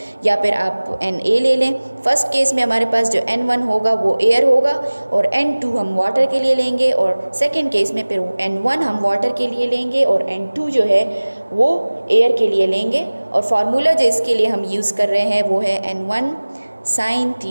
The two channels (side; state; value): both; inverted; correlation -1.00